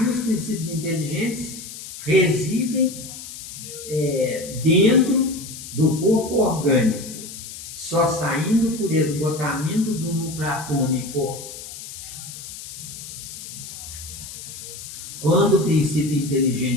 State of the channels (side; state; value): left; noise; hiss, 12 dB below the sound